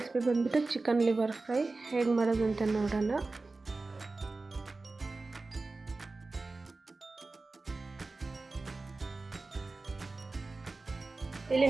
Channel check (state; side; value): quieter; left; 3.5 dB